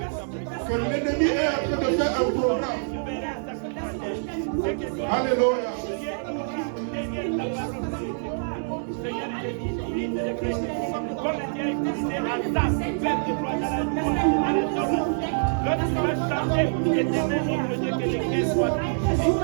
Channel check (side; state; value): left; silent; digital silence